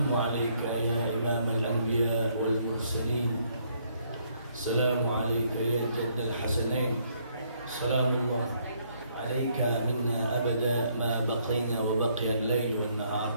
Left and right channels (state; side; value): inverted; both; correlation -0.69